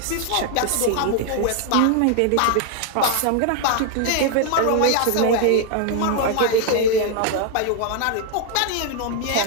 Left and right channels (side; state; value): both; different; correlation 0.00